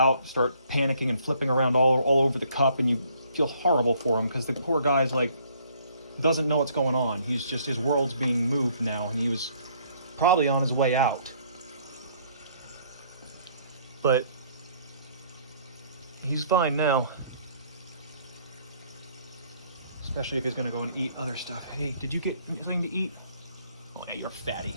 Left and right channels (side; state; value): both; inverted; correlation -0.62